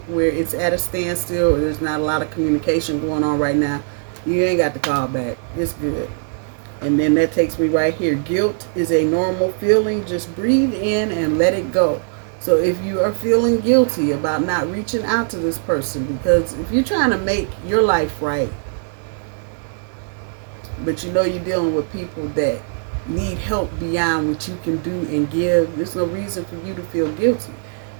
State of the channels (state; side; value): silent; left; digital silence